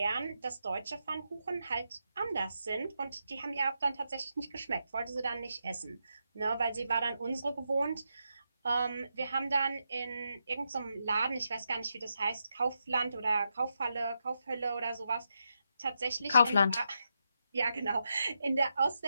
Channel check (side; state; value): both; inverted; correlation -0.85